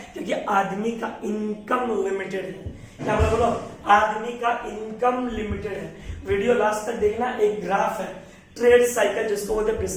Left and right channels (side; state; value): both; identical; correlation 1.00